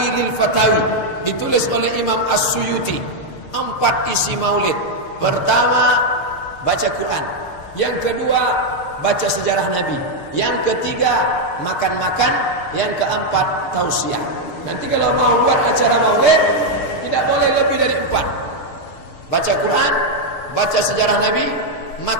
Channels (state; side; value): late; right; 6.5 ms